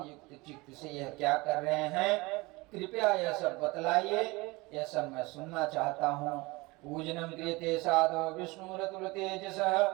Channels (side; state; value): left; quieter; 23.5 dB